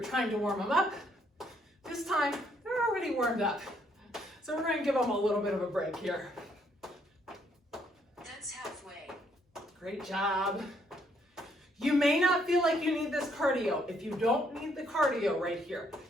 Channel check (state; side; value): normal; both; correlation 0.70